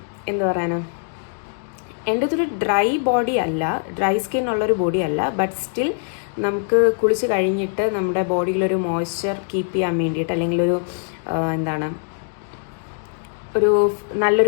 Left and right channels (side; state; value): right; silent; 64 dB below the other